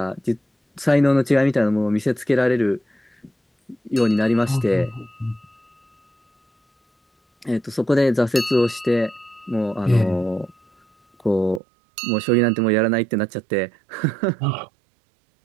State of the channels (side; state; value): left; drops out; at 11.6 s